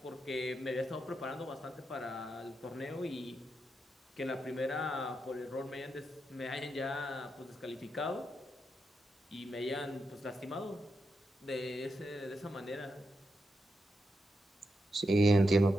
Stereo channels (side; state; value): both; normal; correlation 0.85